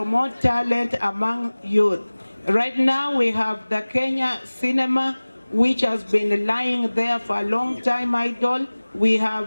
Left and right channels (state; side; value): inverted; both; correlation -1.00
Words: talent among youth. Right now we have the Kenya cinema, which has been lying there for a long time idle. We